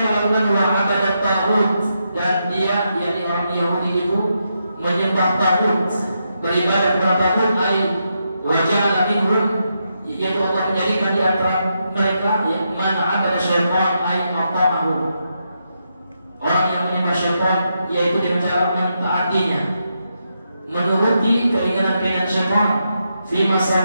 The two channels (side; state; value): both; inverted; correlation -0.83